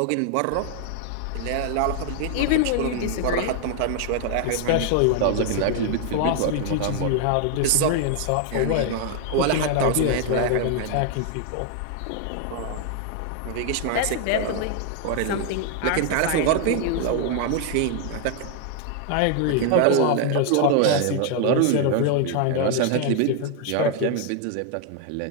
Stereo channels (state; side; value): different; both; correlation 0.00